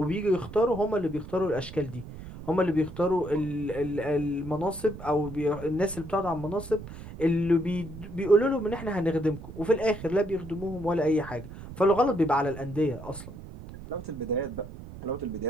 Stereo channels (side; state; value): right; noise; rumble, 13 dB below the sound